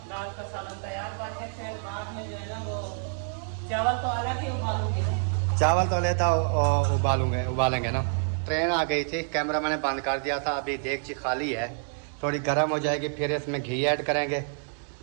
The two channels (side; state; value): left; silent; 60 dB below the other